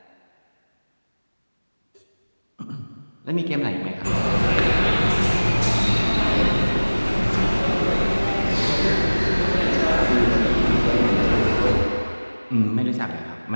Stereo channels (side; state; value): both; inverted; correlation -1.00